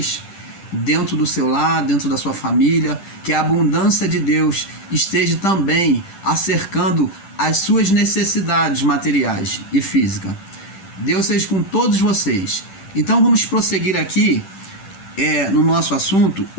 dentro do seu lar, dentro da sua família, que a abundância de Deus esteja também acercando as suas necessidades materiais e físicas. Deus seja com todos vocês. Então vamos prosseguir aqui no nosso assunto,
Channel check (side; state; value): right; late; 10 ms